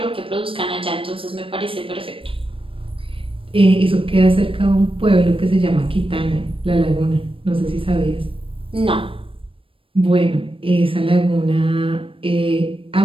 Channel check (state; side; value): late; left; 0.26 ms